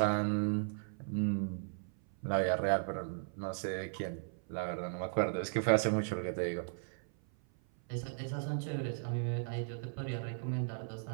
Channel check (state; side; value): silent; left; 54 dB below the other